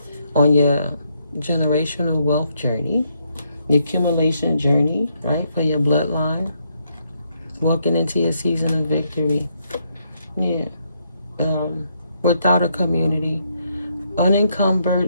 on your generational wealth journey, the accumulation journey, right, for your bloodline, walking into your season of victory. Yeah. Without a community,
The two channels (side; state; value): both; inverted; correlation -0.75